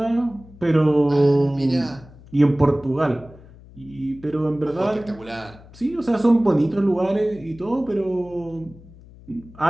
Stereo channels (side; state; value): left; noise; hum, 22 dB below the sound